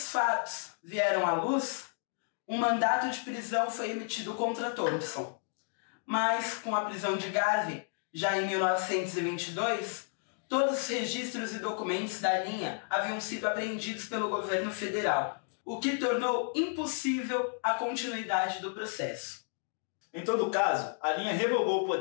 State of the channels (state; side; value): silent; right; 56 dB below the other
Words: fatos vieram à luz, um mandato de prisão foi emitido contra Thompson, mas com a prisão de Garvey, já em 1922, todos os registros e documentos da linha haviam sido apreendidos pelo governo federal, o que tornou impossível a continuidade do processo. Em todo caso, a linha revogou o